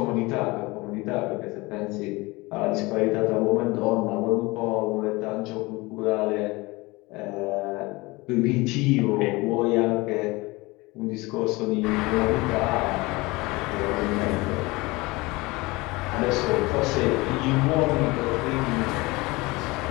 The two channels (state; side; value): quieter; right; 23.0 dB